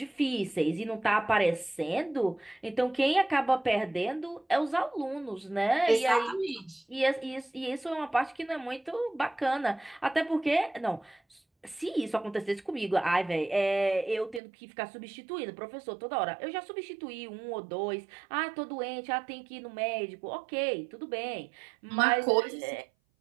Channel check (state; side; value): drops out; left; at 14.4 s